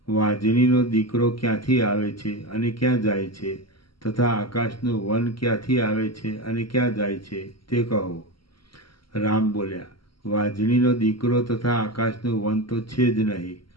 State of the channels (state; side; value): late; right; 0.74 ms